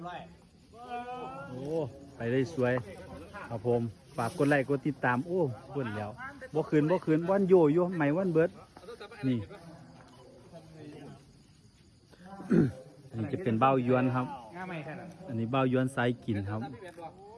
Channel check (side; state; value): both; identical; correlation 1.00